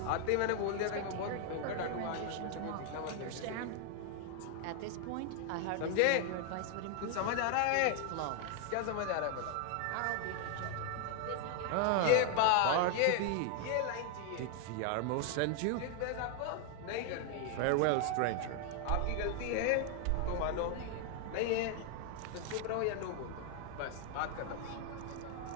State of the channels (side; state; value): both; different; correlation 0.00